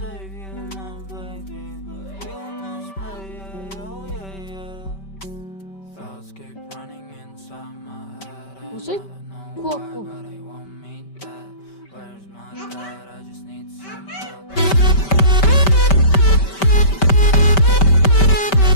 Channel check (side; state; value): right; late; 5.2 ms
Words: Осы кулак бұл.